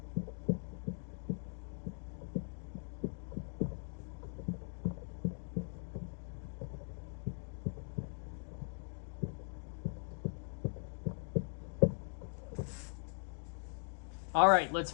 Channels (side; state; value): right; silent; 51 dB below the other